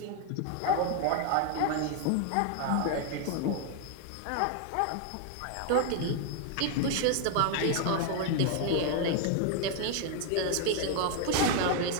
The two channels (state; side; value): different; both; correlation 0.00